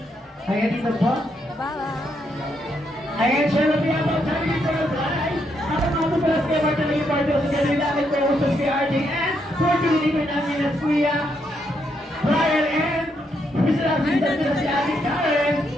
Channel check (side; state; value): both; normal; correlation 0.77